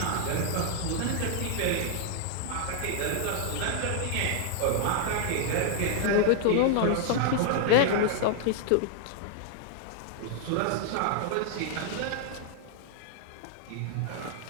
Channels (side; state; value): both; different; correlation -0.01